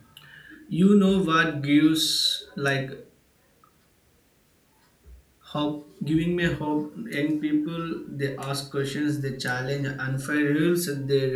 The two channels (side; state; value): both; identical; correlation 1.00